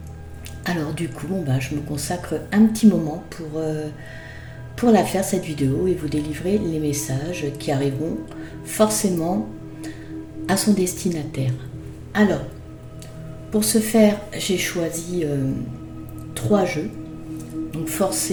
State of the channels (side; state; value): both; identical; correlation 1.00